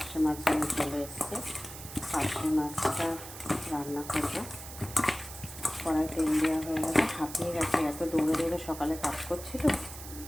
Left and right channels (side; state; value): right; noise; hiss, 12 dB below the sound